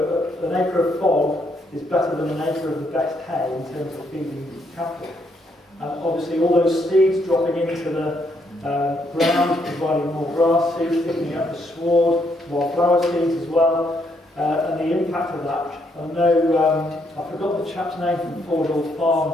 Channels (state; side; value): normal; both; correlation 0.74